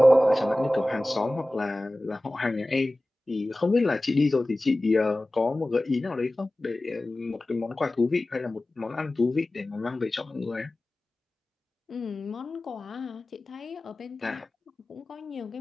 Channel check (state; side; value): normal; both; correlation 0.97